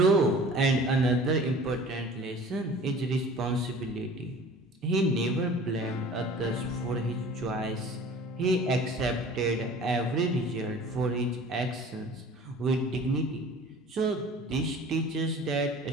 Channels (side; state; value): both; normal; correlation 0.45